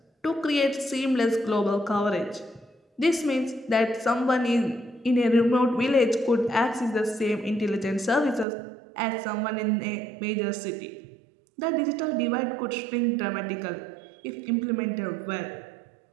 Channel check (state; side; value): drops out; left; at 8.5 s